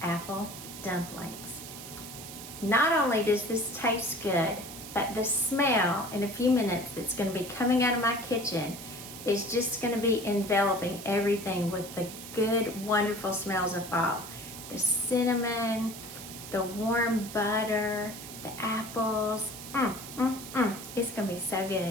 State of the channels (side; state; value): right; noise; hiss, 12 dB below the sound